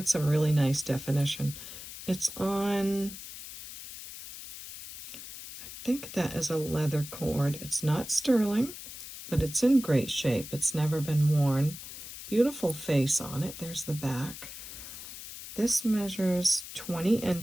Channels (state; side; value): noise; left; hiss, 12 dB below the sound